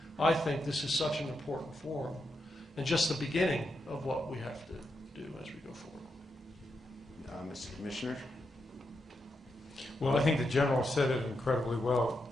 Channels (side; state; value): both; normal; correlation 0.84